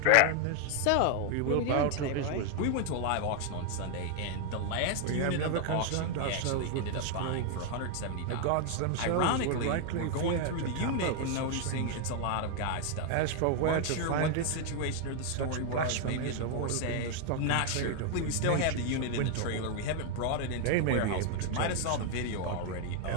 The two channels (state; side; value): different; both; correlation 0.00